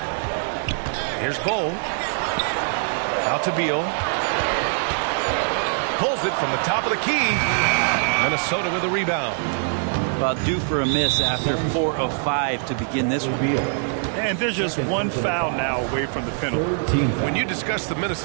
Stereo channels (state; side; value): silent; left; 63 dB below the other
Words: Here's Bull. Out to Beal. Pulls it from the top of the key. Minnesota with a rebound. Well, due for a miss after 4 of 5 to begin this one. And there's just one foul now away from the penalty. When you discuss the